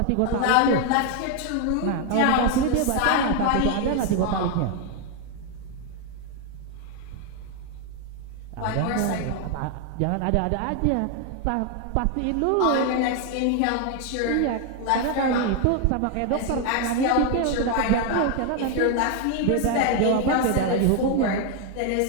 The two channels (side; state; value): both; different; correlation 0.01